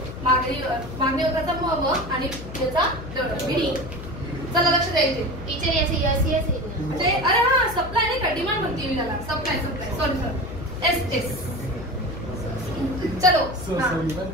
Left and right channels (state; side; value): noise; left; hum, 11 dB below the sound